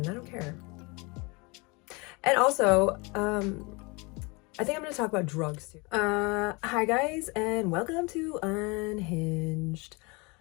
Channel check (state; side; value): quieter; right; 27.9 dB